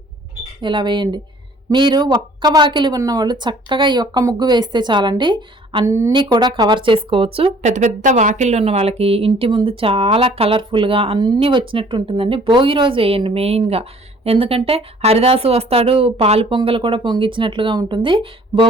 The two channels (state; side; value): normal; both; correlation 0.55